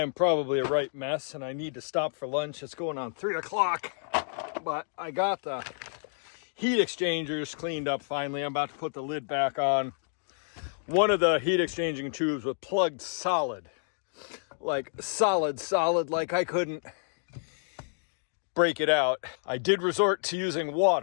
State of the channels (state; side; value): silent; right; digital silence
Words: probably a right mess and I need to stop for lunch. It's going on 3 o'clock, but I got the heat exchangers cleaned up finally. I'm about to put the lid back on. One of the heat exchanging tubes was plugged solid, like solid, like I couldn't break it out. I did resort to using